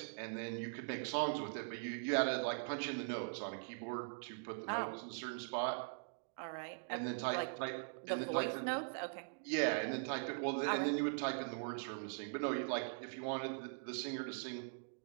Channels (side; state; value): left; silent; digital silence